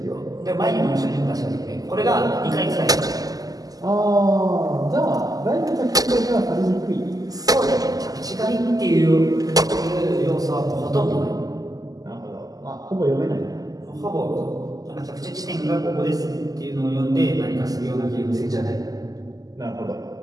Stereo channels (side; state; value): left; late; 0.17 ms